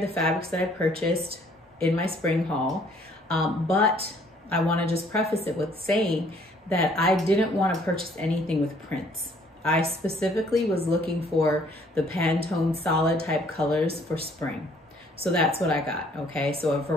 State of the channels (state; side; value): normal; both; correlation 0.61